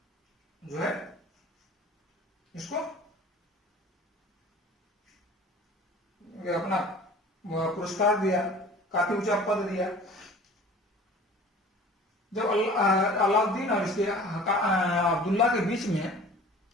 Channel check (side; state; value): both; normal; correlation 0.45